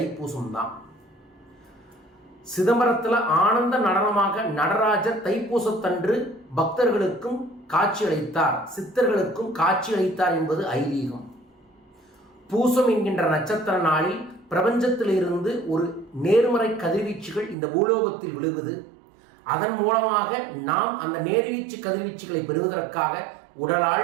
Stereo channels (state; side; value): drops out; left; at 17.6 s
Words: தான். சிதம்பரத்தில் ஆனந்த நடனமாக நடராஜர் தைப்பூசத்தன்று பக்தர்களுக்கும் காட்சியளித்தார், சித்தர்களுக்கும் காட்சியளித்தார் என்பது ஐதீகம். பூசம் என்கின்ற நட்சத்திர நாளில் பிரபஞ்சத்திலிருந்து ஒரு நேர்மறை கதிர்வீச்சுகள் இந்த பூலோகத்தில் விழுவது. அதன் மூலமாக நாம் அந்த நேர்வீச்சு கதிர்வீச்சுகளை பெறுவதற்காக